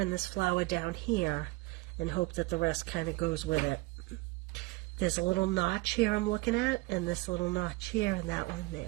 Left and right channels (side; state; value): left; quieter; 22.9 dB